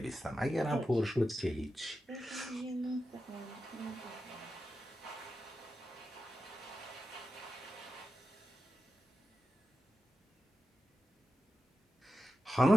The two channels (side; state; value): both; normal; correlation 0.91